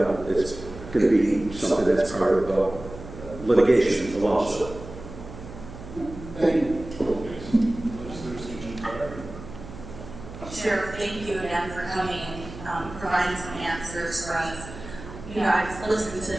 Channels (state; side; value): noise; right; hum, 14 dB below the sound